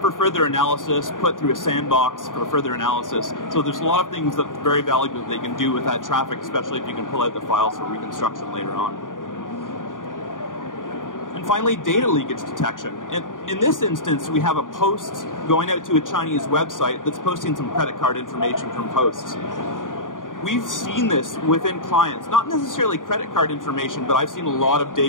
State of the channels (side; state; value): right; late; 0.89 ms